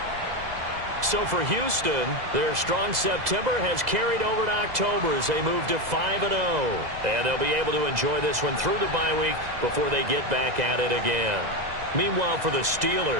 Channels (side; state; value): left; late; 2.0 ms